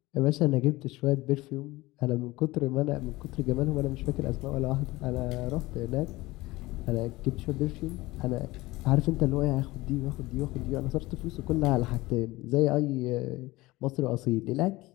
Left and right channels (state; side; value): quieter; right; 19.9 dB